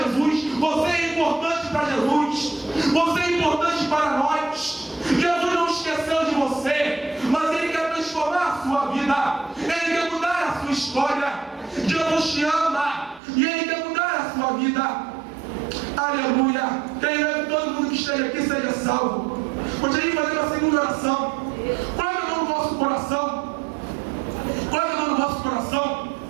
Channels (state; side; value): drops out; left; at 13.2 s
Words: Jesus? Você é importante para Jesus. Você é importante para nós. Jesus não esqueceu de você, mas Ele quer transformar a sua vida. Ele quer mudar a sua história. Jesus te ama e Ele quer mudar a sua vida. Aleluia. Creio que todo mundo que esteja aqui seja salvo. Gostaria de fazer uma segunda oração. Coloque a mão no vosso coração. Coloque a mão no vosso coração.